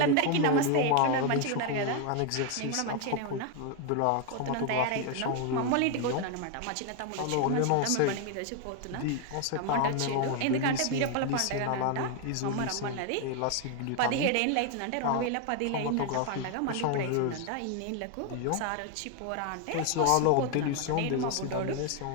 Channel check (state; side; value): different; both; correlation 0.01